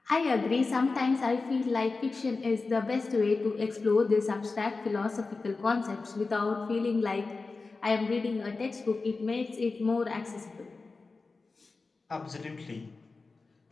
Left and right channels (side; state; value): right; quieter; 3.9 dB